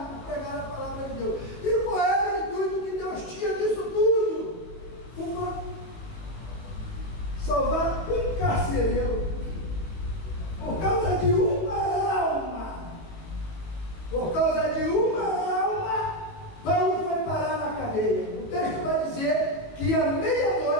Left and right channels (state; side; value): late; right; 19 ms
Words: por pregar a palavra de Deus. E qual era o intuito que Deus tinha nisso tudo? Salvar um carcereiro, por causa de uma alma. Por causa de uma alma, Paulo foi parar na cadeia. O texto vai dizer que à